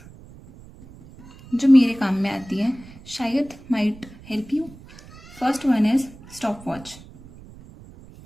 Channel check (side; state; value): right; noise; rumble, 20 dB below the sound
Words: जो मेरे काम में आती हैं, शायद might help you. First one is stopwatch.